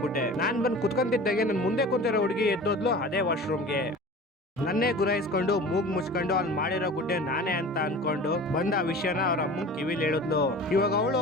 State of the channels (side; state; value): both; normal; correlation 0.39